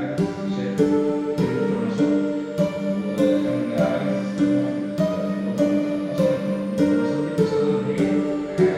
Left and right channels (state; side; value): identical; both; correlation 1.00